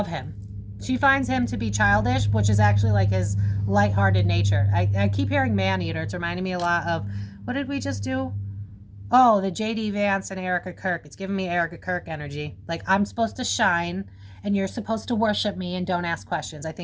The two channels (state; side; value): identical; both; correlation 1.00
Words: him. She finds him to be childish, which is actually like his lighthearted nature. I keep hearing man-eater. It's reminding me a lot of, what did we just do? Oh, the J.D. Vance and Erica Kirk. It's giving me Erica Kirk energy. Like, I'm supposed to shine, and you're supposed to worship me and don't ask questions. I